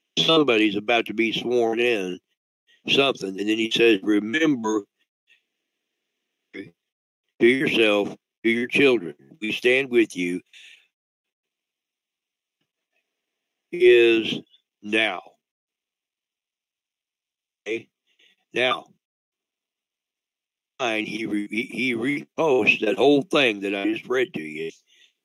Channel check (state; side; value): identical; both; correlation 1.00